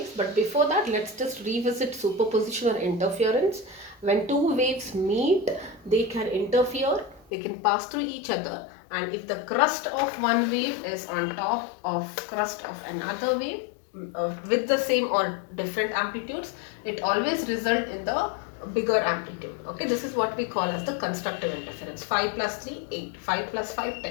but before that, let's just revisit superposition or interference. When two waves meet, they can interfere, they can pass through each other, and if the crust of one wave is on top of crust of another wave with the same or different amplitudes, it always result in the bigger amplitude. Okay, this is what we call as the constructive interference. 5 plus 3 8, 5 plus 5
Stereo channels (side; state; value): right; drops out; at 7.3 s